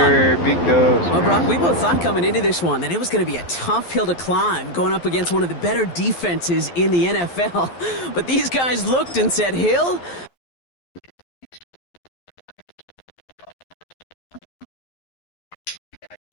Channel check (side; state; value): right; late; 11 ms